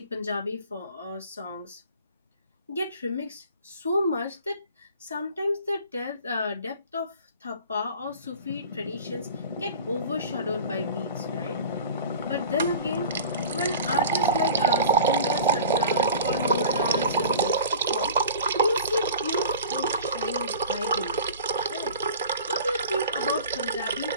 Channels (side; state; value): both; inverted; correlation -0.40